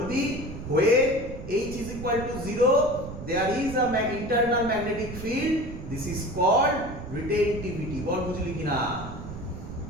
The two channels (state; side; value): noise; right; rumble, 10 dB below the sound